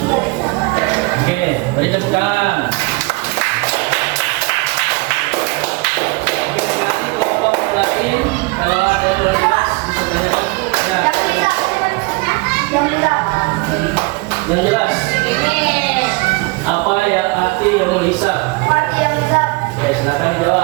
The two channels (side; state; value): left; quieter; 26.1 dB